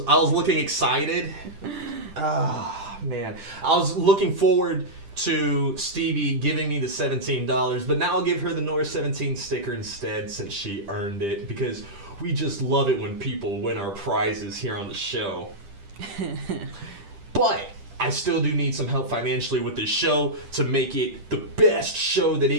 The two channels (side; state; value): left; late; 10 ms